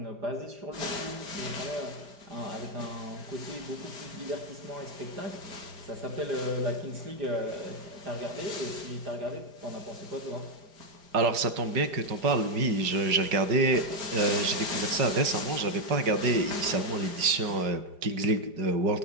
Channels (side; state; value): left; late; 4.9 ms